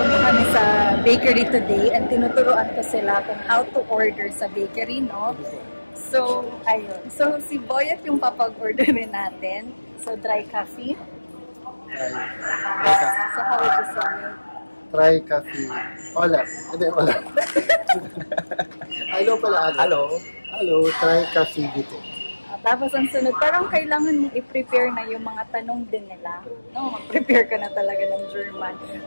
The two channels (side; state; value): both; inverted; correlation -1.00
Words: kami sa bakery today and tinuturuan ko sila kung how to order sa bakery, no? So, ayun. So, si Boyet yung papag-orderin natin. So, dry coffee. So, how would you say it? Dry coffee. Hola. Hindi, hola. Hello pala. Hello, dry coffee dito. Tapos ang sunod, parang kailangan mong i-prepare na yung mga tanong din nila. No, mag-prepare ka na talaga ng German